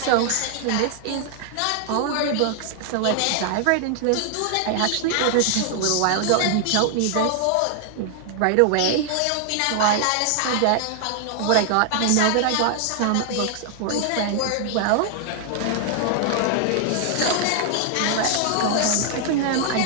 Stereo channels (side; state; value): both; different; correlation 0.00